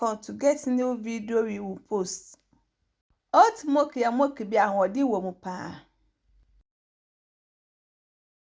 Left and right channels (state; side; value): identical; both; correlation 1.00